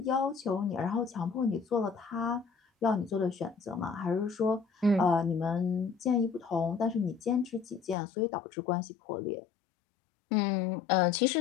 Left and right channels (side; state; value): right; drops out; at 8.0 s